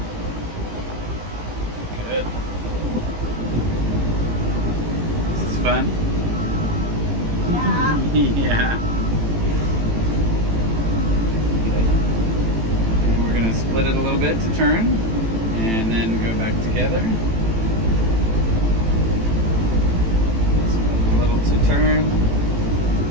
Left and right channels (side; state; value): left; late; 18 ms